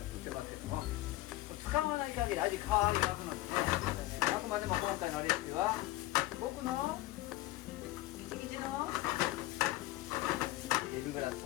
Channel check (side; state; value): right; quieter; 17.5 dB